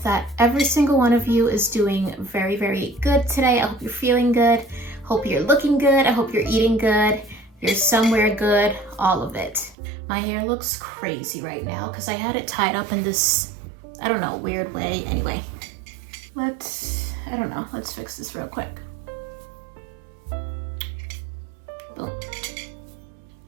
that every single one of you is doing very, very good today. I hope you're feeling good. Hope you're looking good. I hope you're eating good. You're somewhere good, all of it. My hair looks crazy right now because I had it tied up in this, I don't know, weird way. Anyway, let's fix this real quick. Boom.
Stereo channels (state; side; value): drops out; left; at 9.8 s